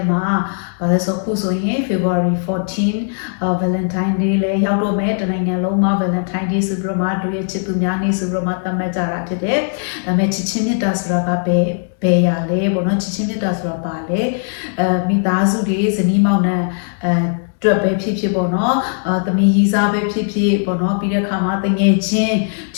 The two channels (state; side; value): silent; right; digital silence